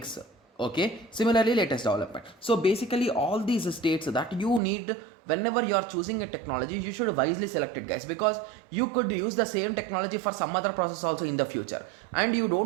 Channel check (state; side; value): drops out; left; at 4.6 s